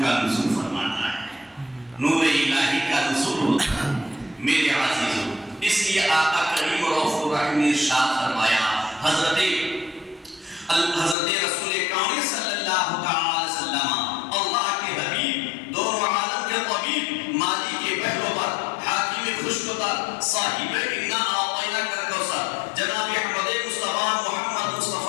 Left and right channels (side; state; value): right; drops out; at 11.2 s